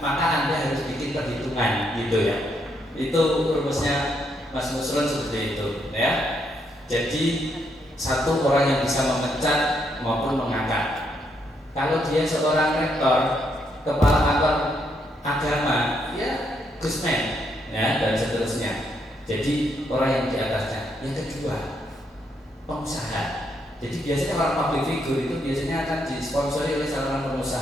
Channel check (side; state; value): both; normal; correlation 0.76